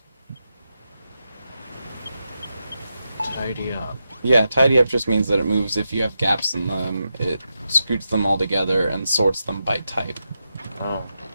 Tidy up. Yeah, tidy up just means that it moves if you have gaps in them. It scoots them all together and sorts them by type. Oh.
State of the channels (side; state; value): both; inverted; correlation -0.87